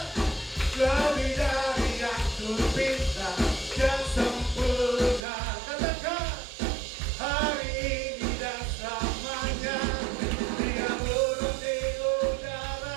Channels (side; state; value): left; drops out; at 5.2 s